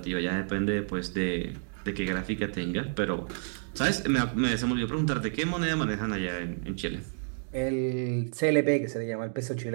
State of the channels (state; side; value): silent; left; digital silence